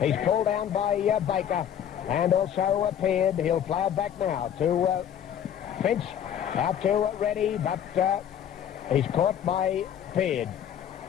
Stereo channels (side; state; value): right; quieter; 9.5 dB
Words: He's pulled down by Baker and also Peard. He'll play it back now to Finch. Out to Reddy, but he's caught by Peard.